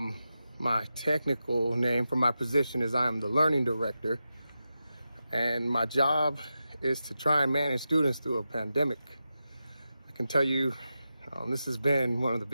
My technical name for my position is I am the learning director, and my job is to try and manage students through a pandemic. I can tell you this has been one of the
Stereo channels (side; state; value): both; inverted; correlation -0.90